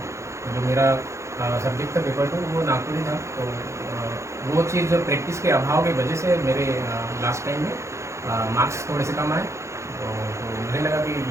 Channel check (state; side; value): late; left; 0.14 ms